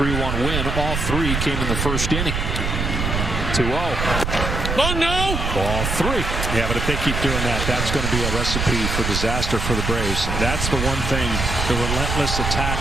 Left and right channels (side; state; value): right; noise; rumble, 2 dB below the sound